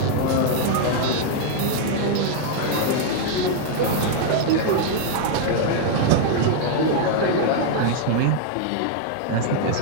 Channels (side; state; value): both; different; correlation 0.00